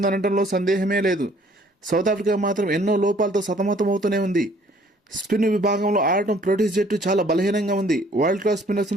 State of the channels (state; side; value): normal; both; correlation 0.59